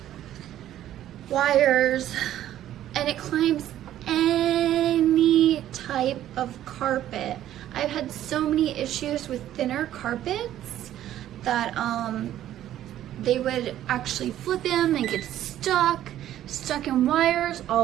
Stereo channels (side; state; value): left; quieter; 12.3 dB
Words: wires, and it climbs any type of carpet. I've had so many issues with thinner carpets that they would actually flip them and get stuck in wires.